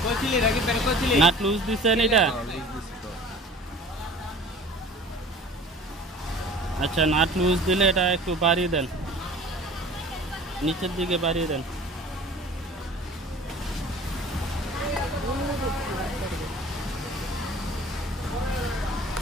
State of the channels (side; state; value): both; normal; correlation 0.44